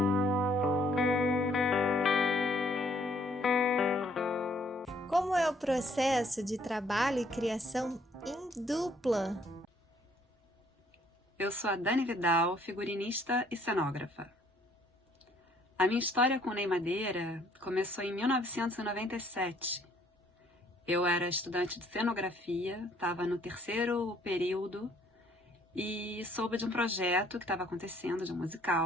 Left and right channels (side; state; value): both; normal; correlation 0.63